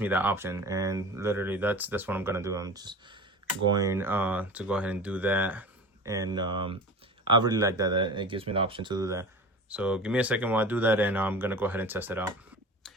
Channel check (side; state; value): both; normal; correlation 0.34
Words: me that option, and literally that's what I'm gonna do. I'm just going to go ahead and do that, and I really like that it gives me the option to do that. So give me a second while I do that, and I'm gonna go ahead and test it out.